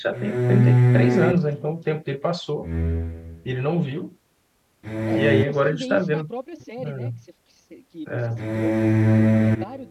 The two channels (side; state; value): both; identical; correlation 1.00